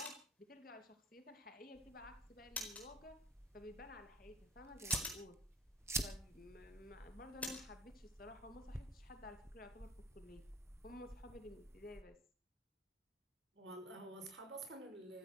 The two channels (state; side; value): normal; both; correlation 0.43